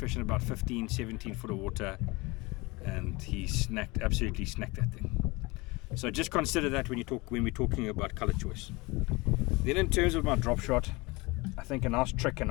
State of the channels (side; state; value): right; quieter; 24.2 dB